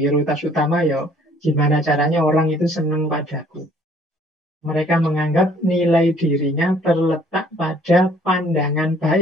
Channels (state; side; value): normal; both; correlation 0.59